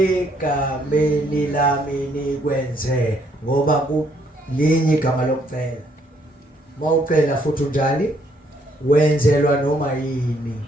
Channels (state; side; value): normal; both; correlation 0.69